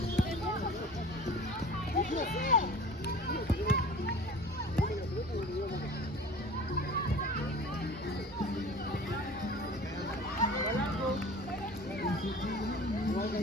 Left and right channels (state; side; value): normal; both; correlation 0.41